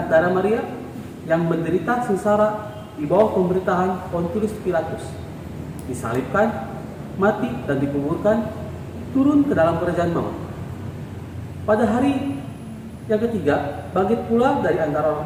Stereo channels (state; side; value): identical; both; correlation 1.00